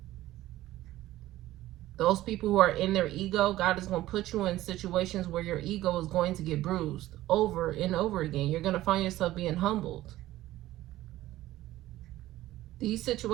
Those people who are in their ego, God is going to put you in situations where your ego is going to get bruised over and over again. You're going to find yourself being humbled. These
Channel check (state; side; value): quieter; left; 15.5 dB